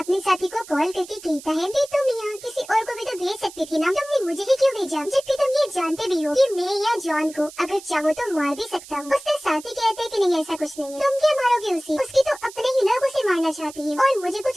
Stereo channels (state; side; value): noise; right; hiss, 17 dB below the sound